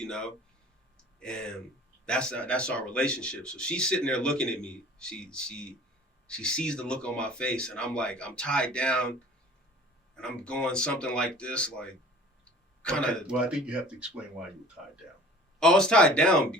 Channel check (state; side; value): normal; both; correlation 0.46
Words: and that's our relationship. So she's sitting there looking at me. She sees the look on my face, and I'm tied down, and I'm going something like this, like kind of. Okay. Well, I think you have to explain why you were tied down. Oh, it's tied down